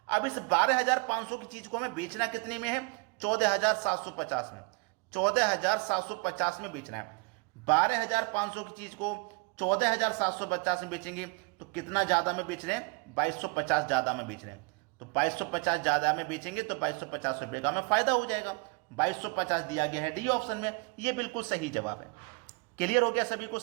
अब इस 12,500 की चीज को हमें बेचना कितने में है? 14,750 में। 14,750 में बेचना है। 12,500 की चीज को 14,750 में बेचेंगे तो कितना ज्यादा में बेच रहे हैं? 2250 ज्यादा में बेच रहे हैं। तो 2250 ज्यादा में बेचेंगे तो 2250 रुपए का हमें फायदा हो जाएगा। 2250 दिया गया है डी ऑप्शन में। यह बिल्कुल सही जवाब है। क्लियर हो गया सभी को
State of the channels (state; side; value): quieter; left; 31.3 dB